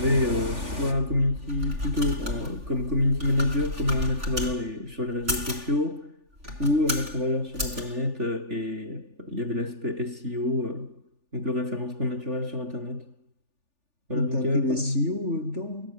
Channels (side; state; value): left; late; 3.4 ms